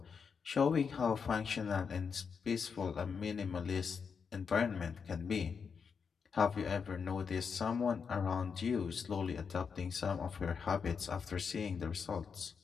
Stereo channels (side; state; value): right; quieter; 6.1 dB